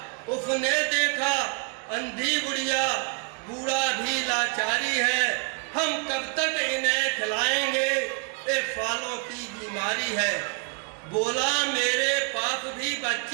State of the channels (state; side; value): quieter; left; 33.9 dB